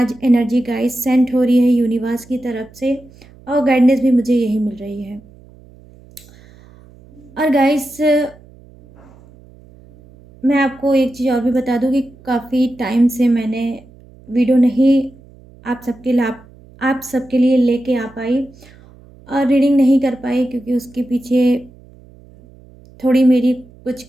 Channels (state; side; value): noise; right; hum, 24 dB below the sound